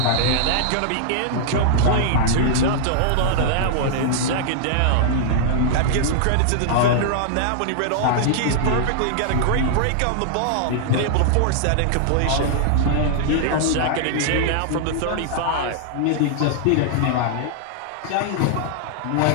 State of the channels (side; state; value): both; different; correlation -0.01